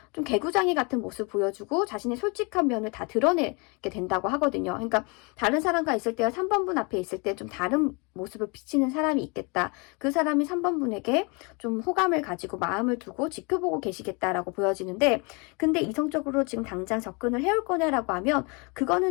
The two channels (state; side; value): quieter; right; 30.7 dB